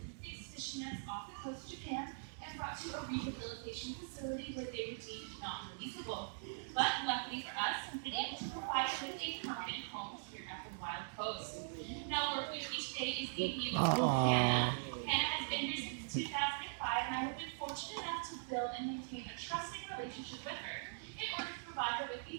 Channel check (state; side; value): silent; left; digital silence